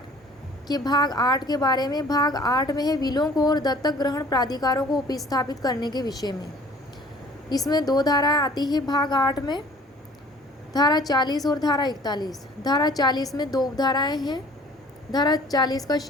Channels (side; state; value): both; normal; correlation 0.51